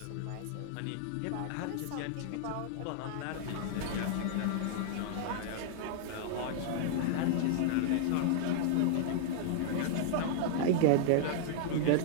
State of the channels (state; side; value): different; both; correlation -0.01